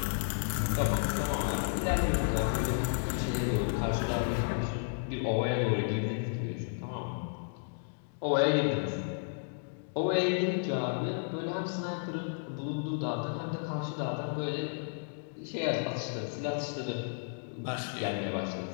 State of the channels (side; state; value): right; silent; digital silence